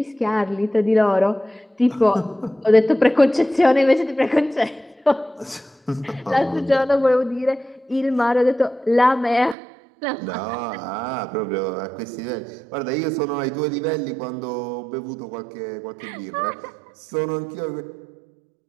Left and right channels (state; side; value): drops out; left; at 9.6 s